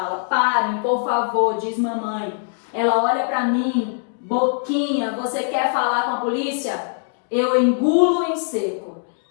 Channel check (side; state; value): right; silent; 65 dB below the other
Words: parem, por favor, diz mamãe. Ela olha pra mim, boquinha, você quer falar com a polícia? Eu engulo em seco.